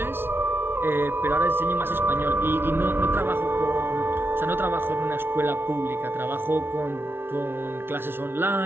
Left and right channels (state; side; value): late; left; 0.11 ms